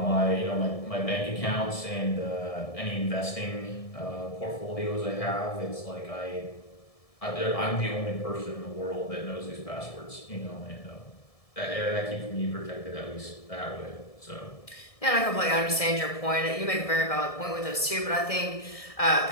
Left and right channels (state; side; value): late; right; 1.7 ms